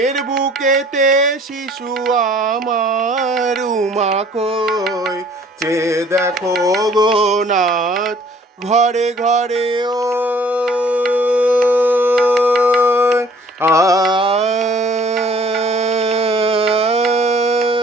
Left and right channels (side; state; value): both; normal; correlation 0.55